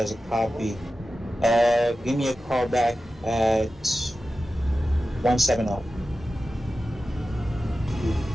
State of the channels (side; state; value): both; normal; correlation 0.94